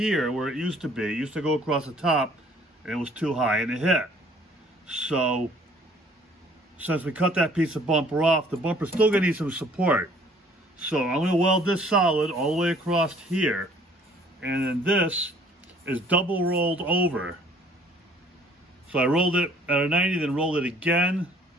where it used to be. It used to go across the top, and it was too high, and it hit. So, since we cut that piece of bumper off, the bumper's still gonna need some support. So I'm gonna weld this solid all the way across here, and then this is double rolled over. So I rolled it at a 90, then rolled it again.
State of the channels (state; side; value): normal; both; correlation 0.57